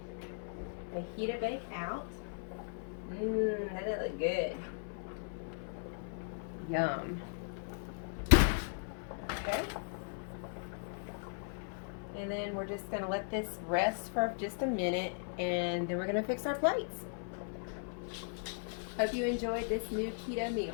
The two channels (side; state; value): right; silent; 53 dB below the other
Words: fajita bake out. That look good. Yum. Okay. And then we're just going to let this rest for just a minute, and then we're going to fix our plates. Hope you enjoyed this new keto meal.